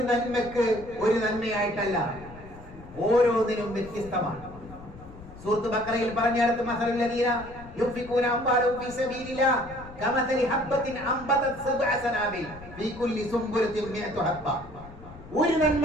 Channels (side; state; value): left; noise; rumble, 17 dB below the sound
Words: നന്മക്ക് ഒരു നന്മയായിട്ടല്ല, ഓരോന്നിനും വ്യത്യസ്തമാണ്. സൂറത്ത് ബഖറയിൽ പറഞ്ഞിടത്ത് മസലുൽ ലദീന യുൻഫിഖൂന അംവാലഹും ഫീ സബീലില്ലാഹ് കമസലി ഹബ്ബത്തിൻ അംബതത് സബ്അ സനാബിൽ ഫീ കുല്ലി സുംബുലത്തിൻ മിഅതു ഹബ്ബ. ഒരു